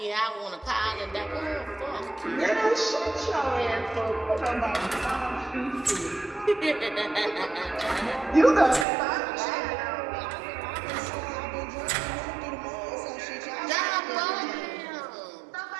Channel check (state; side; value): drops out; left; at 8.8 s